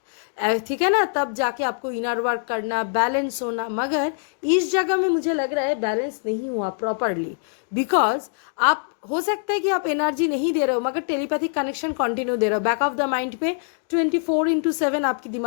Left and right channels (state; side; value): silent; right; digital silence